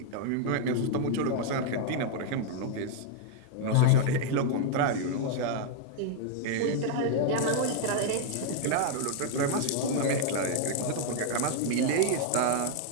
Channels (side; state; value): both; different; correlation 0.00